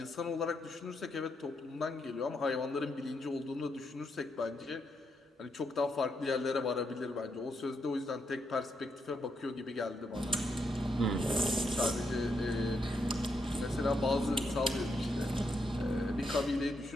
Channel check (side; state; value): both; normal; correlation 0.80